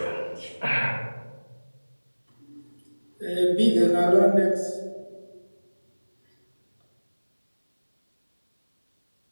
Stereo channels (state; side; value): inverted; both; correlation -1.00